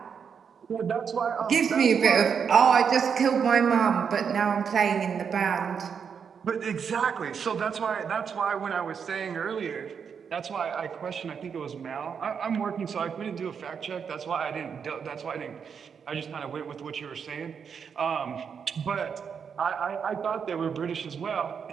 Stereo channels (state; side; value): quieter; left; 6.8 dB